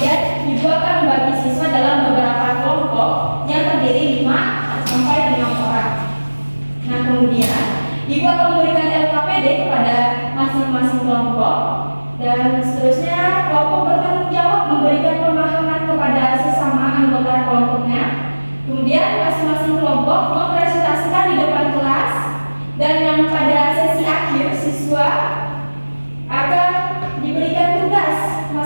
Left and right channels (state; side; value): inverted; both; correlation -1.00